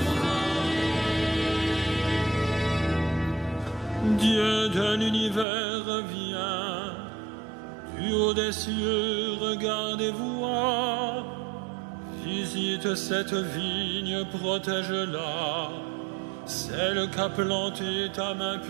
Dieu de l'univers, viens, du haut des cieux, regarde et vois. Visite cette vigne, protège-la, celle qu'a plantée ta main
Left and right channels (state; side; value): drops out; left; at 5.5 s